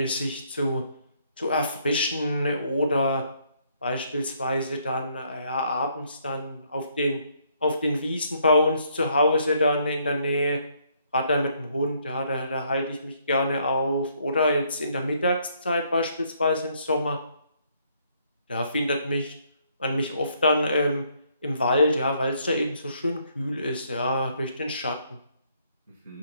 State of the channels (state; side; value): inverted; both; correlation -0.69